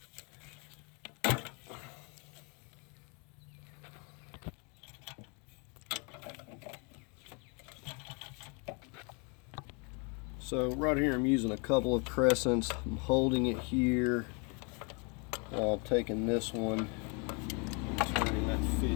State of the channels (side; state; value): right; quieter; 34.1 dB